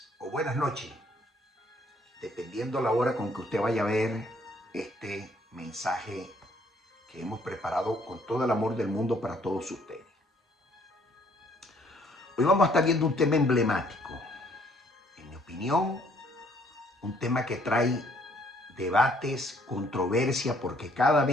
o buenas noches, dependiendo la hora con que usted vaya a ver este mensaje que hemos preparado con todo el amor del mundo para todos ustedes. Hoy vamos a estar viendo un tema emblemático, en mi opinión, un tema que trae debates, controversia, porque cada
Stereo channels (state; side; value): normal; both; correlation 0.63